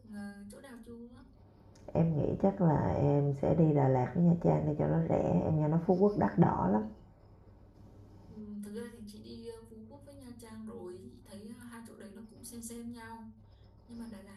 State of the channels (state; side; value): identical; both; correlation 1.00